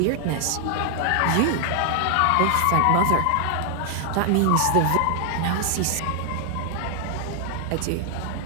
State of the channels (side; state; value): both; different; correlation 0.00